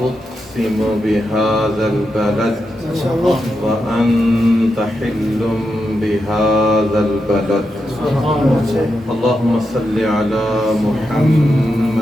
أقسم بهذا البلد وأنت حل بهذا البلد. اللهم صل على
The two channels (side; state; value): both; normal; correlation 0.86